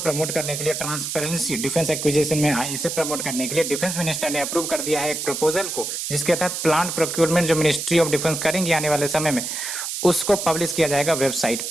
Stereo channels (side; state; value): right; noise; hiss, 4 dB below the sound